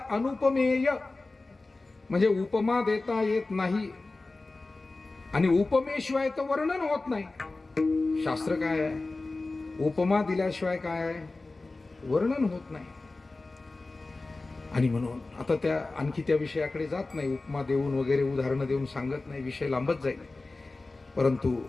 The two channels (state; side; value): quieter; right; 3.3 dB